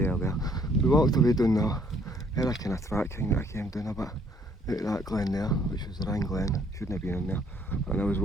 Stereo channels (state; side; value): normal; both; correlation 0.65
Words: We walked away down there. Had a kind of track thing that I came down a bit out of that glen there, which was the Rhine Glen. Shouldn't have been in there. And I was